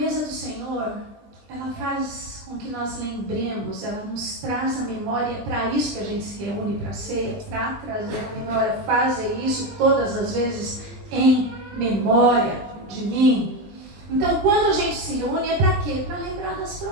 do Senhor, ela faz com que nós lembremos, ela nos traz a memória. É para isso que a gente se reúne para a ceia, para trazer a memória. Fazer isso todas as vezes em memória de mim. Então, quando a gente se reúne, é para quê? Para lembrar das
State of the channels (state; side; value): late; left; 20 ms